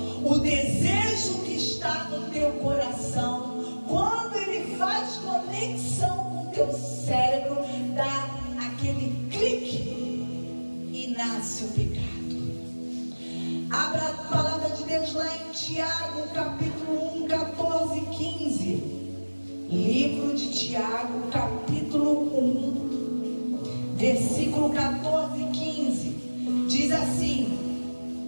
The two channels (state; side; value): inverted; both; correlation -1.00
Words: O desejo que está no teu coração, quando ele faz conexão com o teu cérebro, dá aquele clique e nasce o pecado. Abra a palavra de Deus lá em Tiago, capítulo 1, 14 e 15. Livro de Tiago, capítulo 1, versículo 14 e 15. Diz